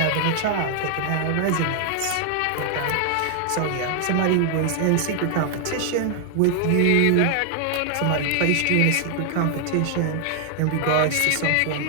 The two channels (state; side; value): different; both; correlation 0.00